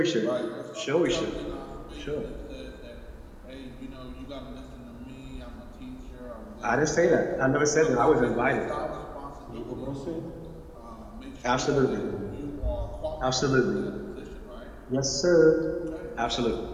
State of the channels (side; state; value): both; identical; correlation 1.00